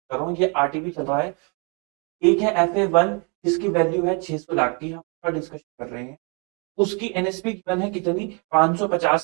कर रहा हूँ, ये आरटीबी चल रहा है। एक है FA1 जिसकी वैल्यू है 600 लाख की, हम उसका डिस्कशन कर रहे हैं। उसकी एनएसपी गिवन है कितनी?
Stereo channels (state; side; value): quieter; left; 34.0 dB